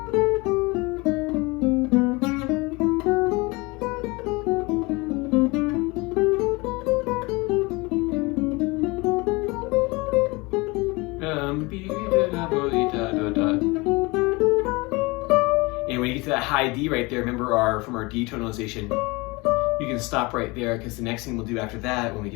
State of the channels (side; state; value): right; quieter; 25.1 dB